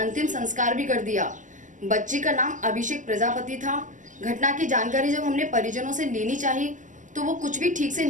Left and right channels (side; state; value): left; late; 0.37 ms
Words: संस्कार भी कर दिया। बच्ची का नाम अभिषेक प्रजापति था। घटना की जानकारी जब हमने परिजनों से लेनी चाहिए तो वो कुछ भी ठीक से